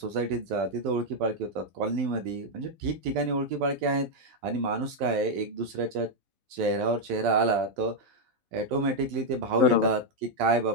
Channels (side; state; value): left; late; 12 ms